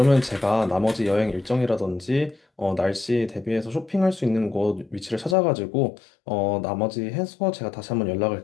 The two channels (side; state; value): right; drops out; at 5.4 s